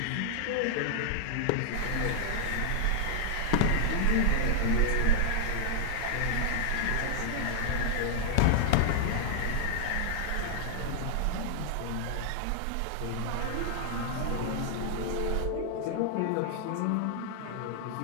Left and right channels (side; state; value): both; different; correlation -0.01